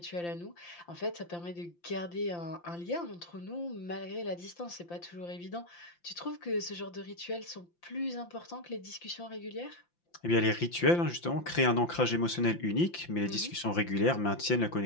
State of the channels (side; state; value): right; late; 5.8 ms